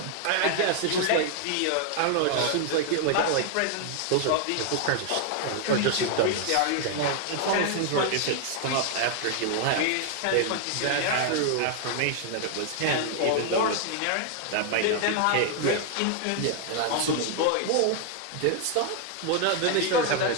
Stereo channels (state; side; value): different; both; correlation 0.00